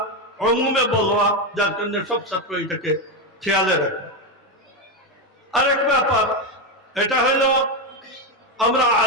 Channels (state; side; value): normal; both; correlation 0.10